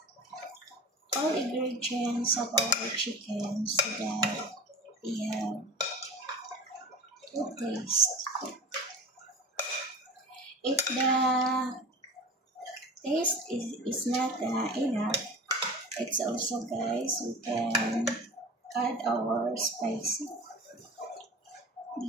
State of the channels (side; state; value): both; normal; correlation 0.33